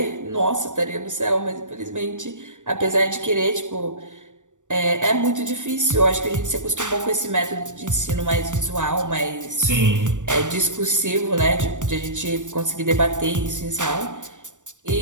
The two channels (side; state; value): left; late; 0.86 ms